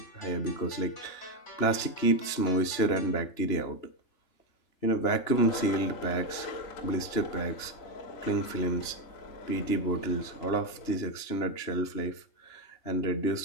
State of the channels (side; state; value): right; late; 3.0 ms